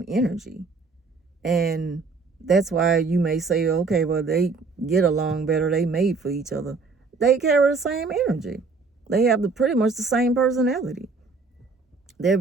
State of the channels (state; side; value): quieter; left; 4.3 dB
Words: energy. And that's why you may say, okay, well, they get along better. They made for each other. They carry the same energy. They have pretty much the same personality. They're